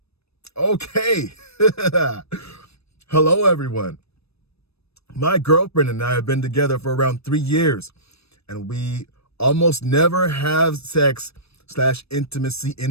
Okay. Hello, everyone. My girlfriend and I have been together for around 3 years, and we almost never have sex/intimacy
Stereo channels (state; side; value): late; right; 0.78 ms